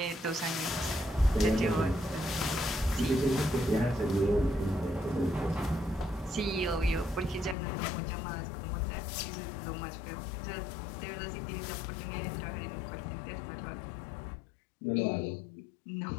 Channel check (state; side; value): drops out; right; at 7.6 s